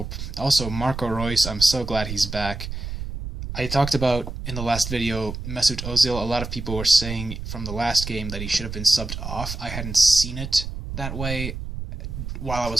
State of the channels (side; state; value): right; noise; rumble, 7 dB below the sound